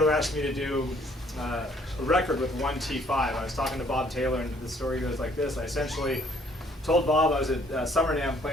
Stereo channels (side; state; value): both; normal; correlation 0.62